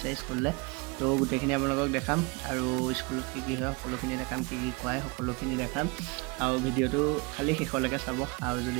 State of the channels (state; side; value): quieter; left; 28.5 dB